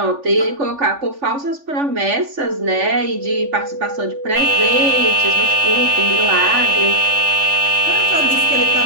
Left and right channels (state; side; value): late; left; 3.5 ms